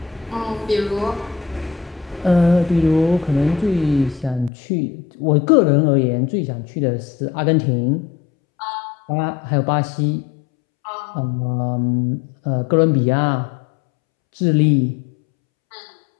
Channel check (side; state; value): right; drops out; at 4.5 s